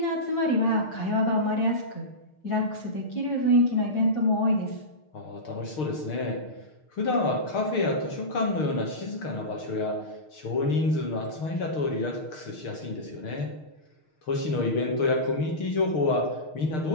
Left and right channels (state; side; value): late; right; 6.5 ms